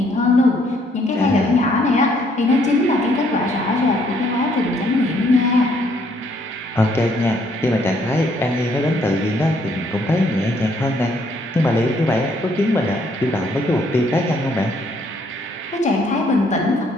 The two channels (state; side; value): normal; both; correlation 0.67